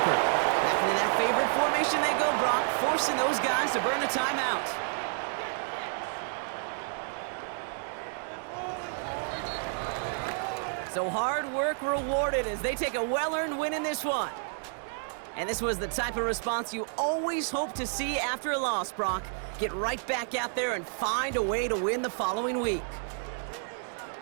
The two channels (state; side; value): silent; left; 58 dB below the other